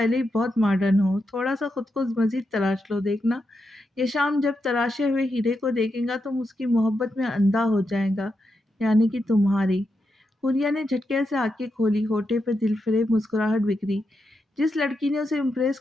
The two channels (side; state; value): both; normal; correlation 0.85